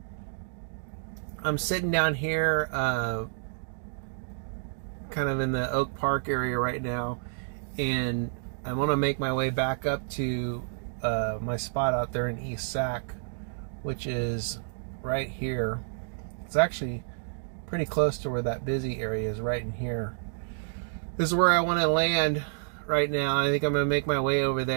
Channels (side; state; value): left; silent; digital silence